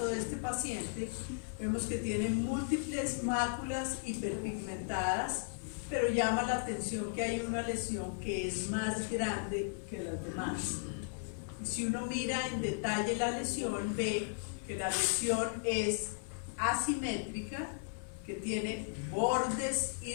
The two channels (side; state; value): right; silent; 54 dB below the other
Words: de este paciente, vemos que tiene múltiples máculas hiperpigmentadas, pero llama la atención que hay una lesión que es más grande que las demás. Y si uno mira en detalle la lesión, ve que la lesión es asimétrica, que tiene bordes